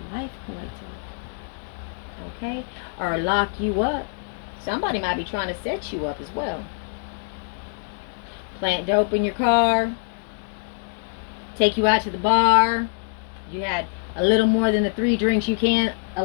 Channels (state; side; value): silent; right; digital silence